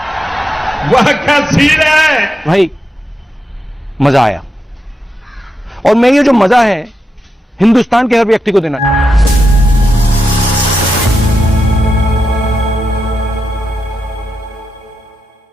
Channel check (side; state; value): both; normal; correlation 0.87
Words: वाह क्या सीन है भाई, मजा आया। और मैं ये जो मजा है हिंदुस्तान के हर व्यक्ति को देना चाहता हूं।